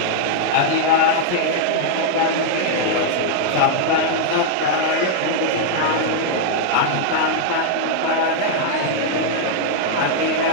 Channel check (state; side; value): different; both; correlation -0.01